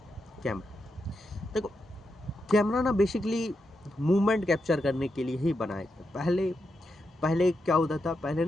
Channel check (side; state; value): both; normal; correlation 0.85